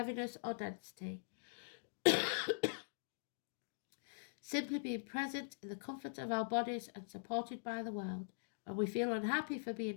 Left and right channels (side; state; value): right; silent; digital silence